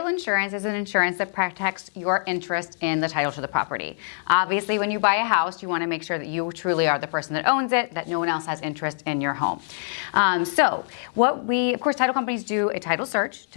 insurance is an insurance that protects your interest in the title to the property. Obviously, when you buy a house, you want to make sure that you truly are the person that owns it, that no one else has interest in your home. Of course, title companies do a title search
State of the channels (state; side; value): silent; right; 62 dB below the other